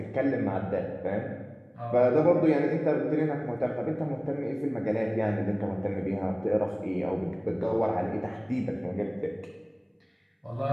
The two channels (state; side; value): identical; both; correlation 1.00